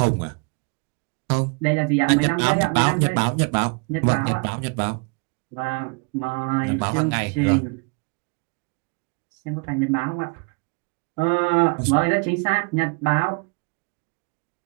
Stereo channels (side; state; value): left; quieter; 34.0 dB